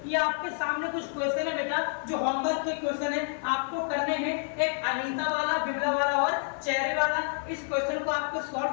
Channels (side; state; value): right; silent; 55 dB below the other